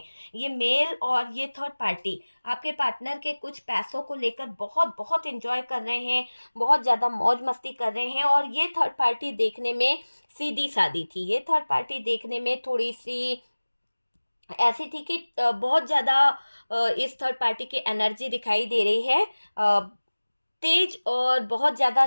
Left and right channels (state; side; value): inverted; both; correlation -1.00